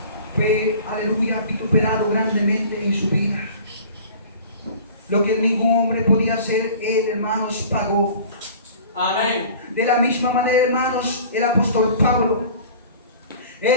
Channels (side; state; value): both; inverted; correlation -0.44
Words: Fue, aleluya, vituperado grandemente en su vida. Lo que ningún hombre podía hacer, Él, hermanos, pagó. Amén. De la misma manera, hermanos, el apóstol Pablo,